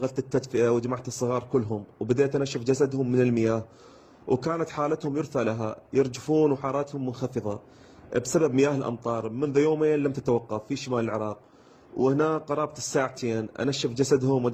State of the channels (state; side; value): identical; both; correlation 1.00